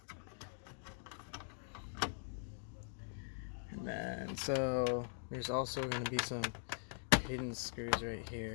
And then, so there's also gonna be some hidden screws right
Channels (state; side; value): silent; right; digital silence